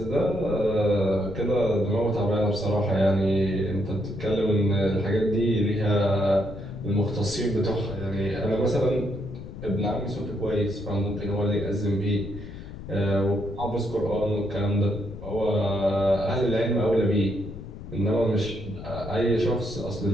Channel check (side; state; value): left; noise; rumble, 12 dB below the sound